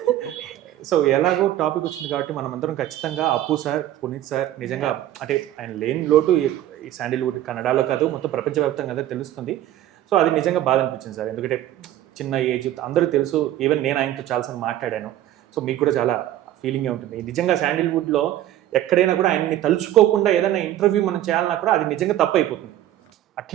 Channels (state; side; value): quieter; left; 13.1 dB